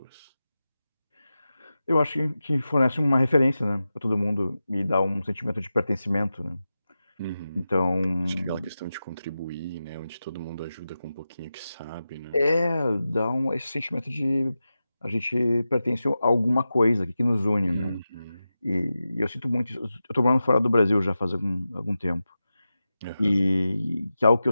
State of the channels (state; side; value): inverted; both; correlation -0.93